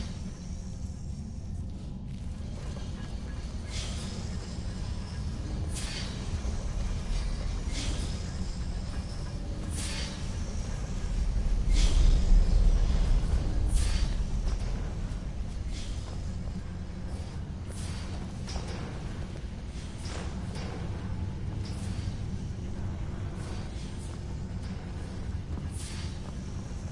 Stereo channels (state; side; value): identical; both; correlation 1.00